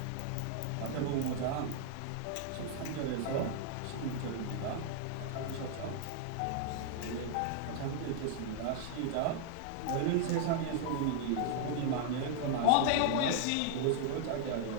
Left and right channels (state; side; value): different; both; correlation 0.00